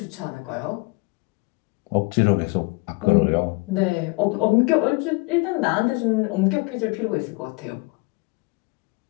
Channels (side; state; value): right; quieter; 27.1 dB